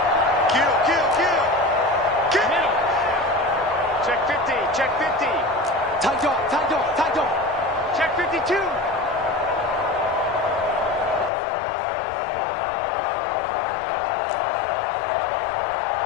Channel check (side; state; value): right; drops out; at 11.3 s